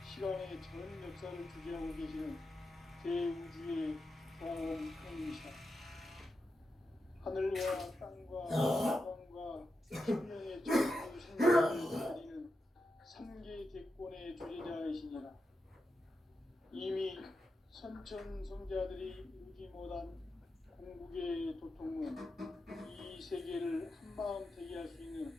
시간의 전 역사를 주재하고 계시는 대우주의 경험형이시다. 하늘과 땅과 태양과 생명의 전부 생명을 가리는 삼계 대권의 주제자이시니라. 이미 선천성자들이 이루지 못한 궁극의 도통은 이 세계를 한마음 되게 할 수 있는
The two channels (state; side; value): normal; both; correlation 0.88